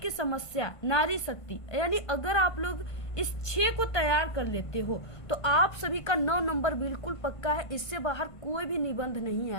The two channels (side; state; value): right; late; 1.5 ms